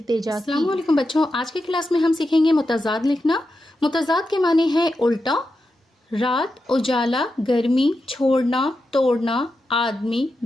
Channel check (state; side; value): normal; both; correlation 0.89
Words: की। अस्सलाम वालेकुम बच्चों, आज की क्लास में हम सीखेंगे मुतज़ाद लिखना। मुतज़ाद के माने हैं उल्टा। रात, उजाला, गर्मी, छोड़ना, तोड़ना, आदमी,